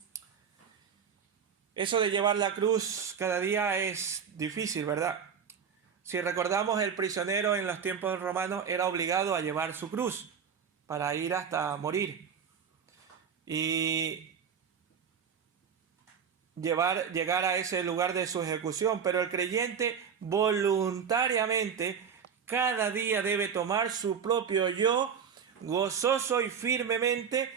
eso de llevar la cruz cada día es difícil, ¿verdad? Si recordamos, el prisionero en los tiempos romanos era obligado a llevar su cruz para ir hasta morir. Y llegar a ese lugar de su ejecución, pero el creyente voluntariamente cada día debe tomar su propio yo gozoso y firmemente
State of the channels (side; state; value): left; quieter; 7.0 dB